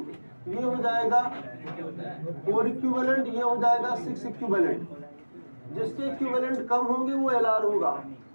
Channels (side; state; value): both; inverted; correlation -1.00